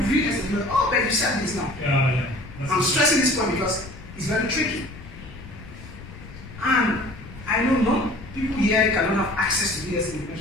real estate, like, oh, but you said this now. Yeah. I'm stressing this point because it's very tricky. And I know not people here cannot have access to real estate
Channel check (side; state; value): left; noise; rumble, 16 dB below the sound